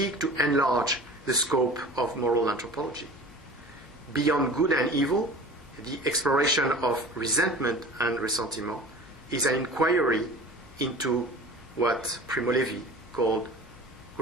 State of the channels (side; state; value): both; normal; correlation 0.40